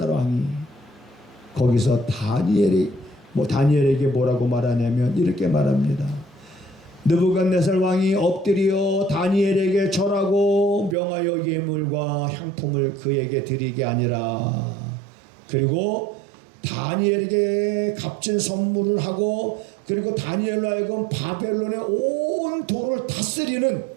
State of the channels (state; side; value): drops out; left; at 11.0 s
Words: 왕이 거기서 다니엘에게 뭐라고 말하냐면 이렇게 말합니다. 느부갓네살 왕이 엎드려 다니엘에게 절하고 명하여 예물과 향품을 그에게 드리게 아니라 그리고 다니엘에게 값진 선물을 하고 그리고 다니엘로 하여금 바벨론의 온 도를 다스리는